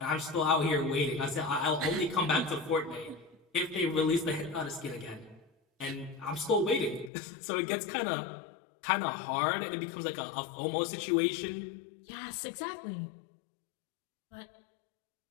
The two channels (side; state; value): right; drops out; at 7.1 s